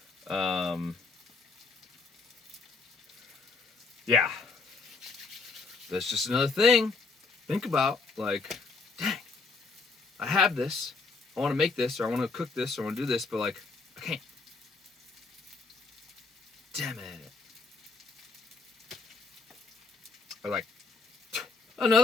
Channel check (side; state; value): right; quieter; 4.2 dB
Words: Yeah. That's just another thing. Think about, like, dang, I have this. I want to make this, or I want to cook this, or I want to do this, but, like, I can't. Damn it. Or like,